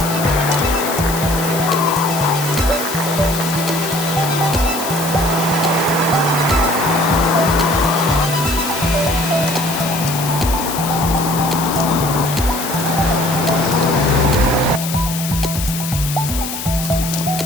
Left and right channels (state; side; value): noise; left; hiss, 7 dB below the sound